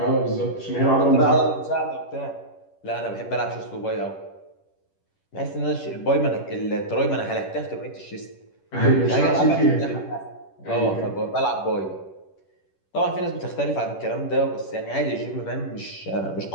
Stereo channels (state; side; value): late; right; 10 ms